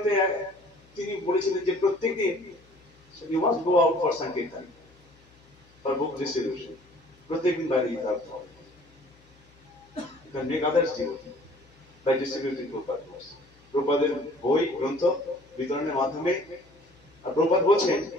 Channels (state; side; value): noise; left; hum, 29 dB below the sound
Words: তিনি বলেছিলেন যে প্রত্যেকদিন you must go out for sankirtan, for book distribution. প্রত্যেকদিন বাইরে যেতে হবে। You can make others devotee by distributing Prabhupada books. প্রভুপাদের বই গ্রন্থ বিতরণের মাধ্যমে। আর প্রভুপাদ বলছেন,